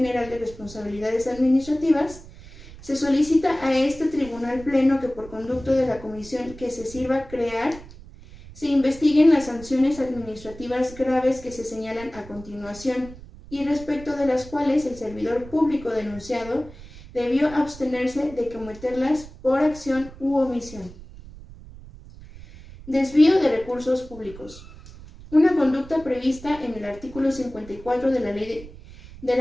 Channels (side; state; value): right; noise; rumble, 17 dB below the sound